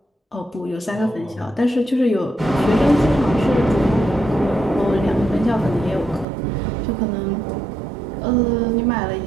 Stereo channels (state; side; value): drops out; left; at 6.2 s